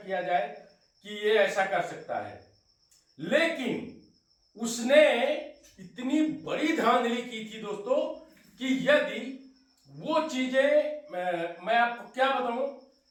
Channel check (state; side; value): identical; both; correlation 1.00